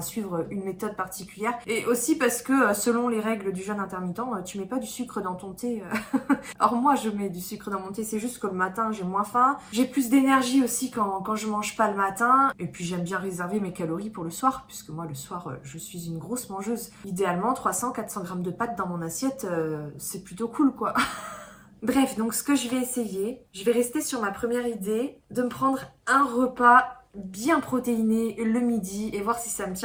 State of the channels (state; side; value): identical; both; correlation 1.00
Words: suivre une méthode particulière. Et aussi parce que selon les règles du jeûne intermittent, tu mets pas du sucre dans ton thé. Or moi je mets du sucre dans mon thé, c'est juste que le matin j'ai moins faim. J'ai plus d'énergie aussi quand je mange pas le matin. Et puis j'aime bien réserver mes calories pour le soir, puisque moi le soir je suis une grosse mangeuse. Idéalement 300-400 grammes de pâtes dans mon assiette, c'est plutôt cool quoi. Bref, donc ce que je vais essayer, je vais rester sur ma première idée de me prendre un repas bien protéiné le midi et voir si ça me